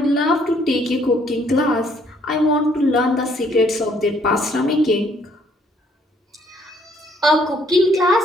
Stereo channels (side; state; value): both; normal; correlation 0.65